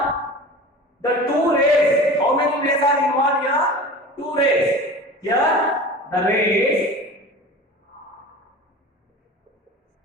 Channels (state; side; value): normal; both; correlation 0.36